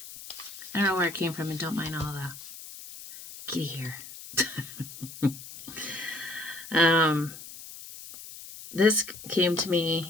I don't know where it came from, and don't mind all the kitty hair. This came to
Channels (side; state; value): left; noise; hiss, 14 dB below the sound